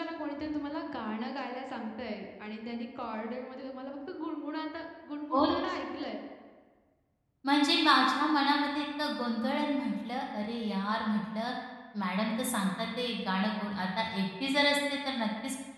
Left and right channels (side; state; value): both; identical; correlation 1.00